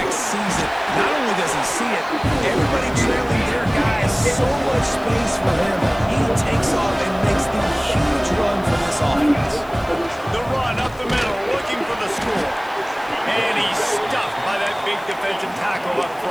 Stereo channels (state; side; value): noise; left; hiss, 25 dB below the sound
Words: sees it. Not only does he see it, everybody trailing their guy has so much space for him. He takes off and makes the huge run for this offense. The run up the middle, looking for the score. And he's stuffed by that big defensive tackle up